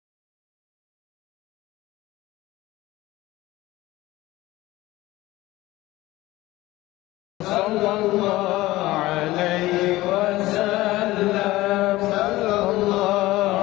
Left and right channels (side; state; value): right; quieter; 17.9 dB